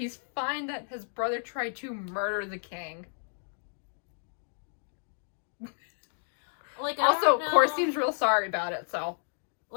fine that his brother tried to murder the king. Like, also, Cor seems real sorry about it, so.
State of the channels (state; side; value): silent; right; digital silence